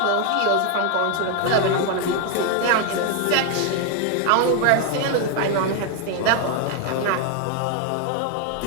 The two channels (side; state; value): both; different; correlation 0.01